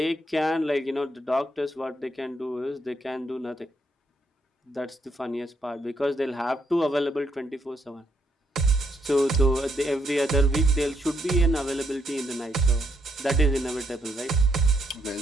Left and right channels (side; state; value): both; normal; correlation 0.75